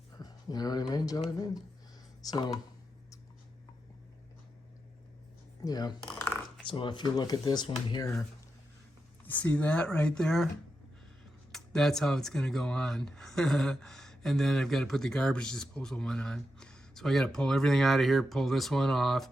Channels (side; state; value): both; normal; correlation 0.87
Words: You know what I mean, Jelly Bean? So, yeah. So if you look at this one here, you see that right there? That's how it's going to go on. And then I've got to put the garbage disposal one on. So I got to pull everything out of here, pull this one off,